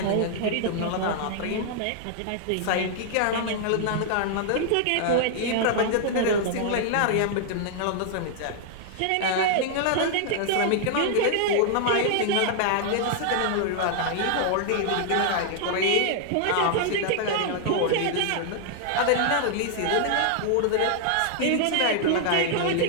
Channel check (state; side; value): different; both; correlation 0.00